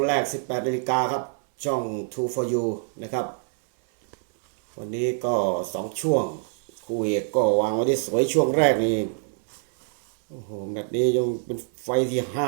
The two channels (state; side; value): silent; left; 62 dB below the other